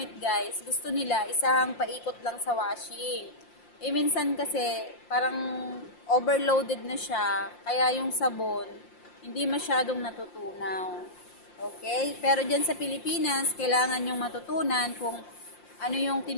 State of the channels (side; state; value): right; late; 5.7 ms